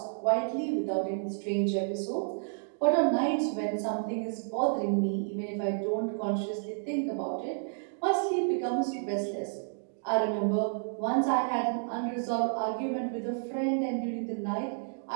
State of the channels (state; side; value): silent; left; digital silence